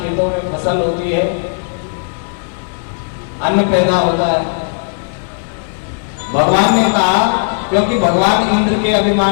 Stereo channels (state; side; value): silent; right; 58 dB below the other